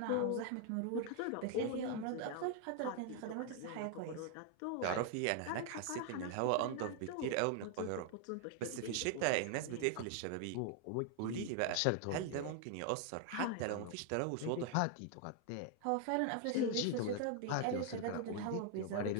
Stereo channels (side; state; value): both; different; correlation 0.00